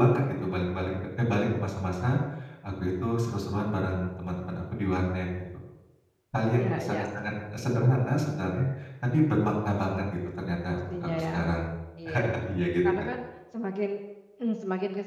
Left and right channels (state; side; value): identical; both; correlation 1.00